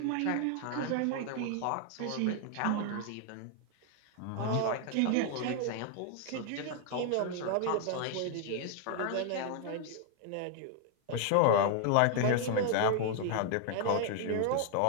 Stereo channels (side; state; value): both; different; correlation 0.00